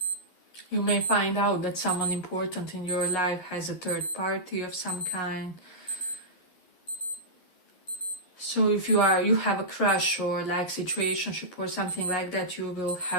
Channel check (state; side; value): late; right; 11 ms